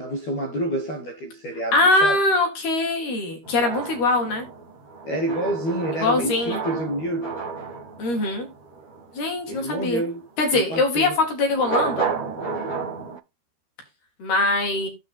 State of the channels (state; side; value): late; right; 13 ms